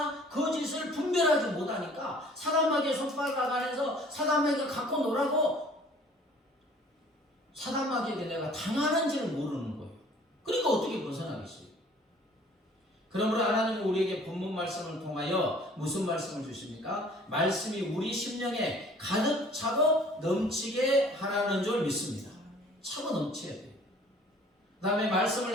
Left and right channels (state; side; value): normal; both; correlation 0.53